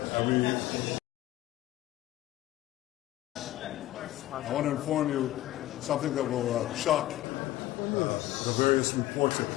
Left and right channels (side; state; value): right; quieter; 15.3 dB